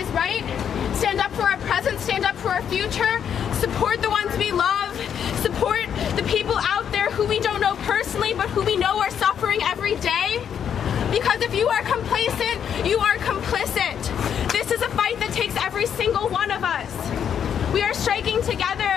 right, stand up for our present, stand up for our future, support the ones we love, support the people out there who we don't know personally, but who we know are suffering every day. Because if you are complacent, you are complicit. This is a fight that takes every single one of us. We are striking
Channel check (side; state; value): right; quieter; 8.4 dB